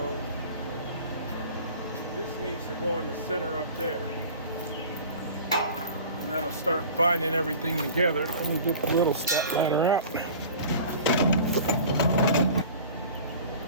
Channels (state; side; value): inverted; both; correlation -0.41